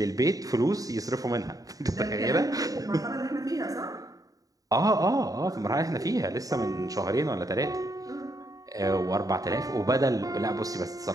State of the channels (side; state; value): left; late; 0.17 ms